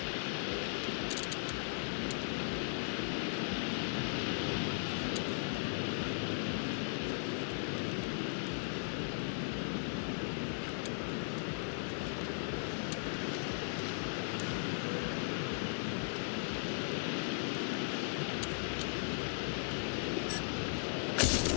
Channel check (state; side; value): silent; right; digital silence